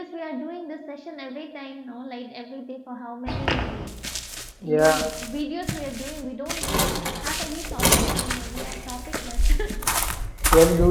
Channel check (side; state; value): both; identical; correlation 1.00